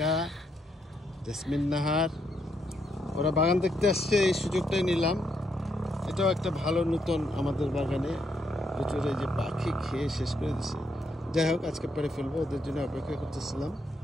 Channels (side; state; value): both; normal; correlation 0.77